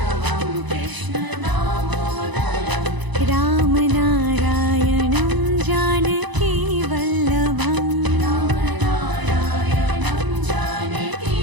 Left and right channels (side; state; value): left; late; 1.0 ms